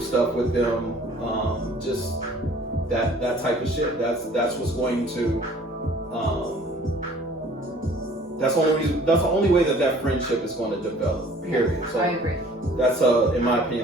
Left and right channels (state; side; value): normal; both; correlation 0.52